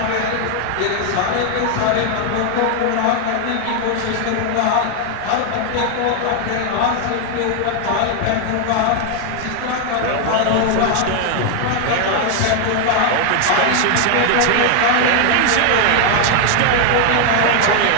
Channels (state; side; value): different; both; correlation 0.00